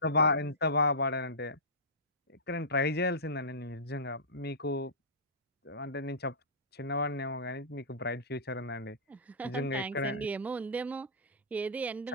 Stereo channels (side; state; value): both; normal; correlation -0.19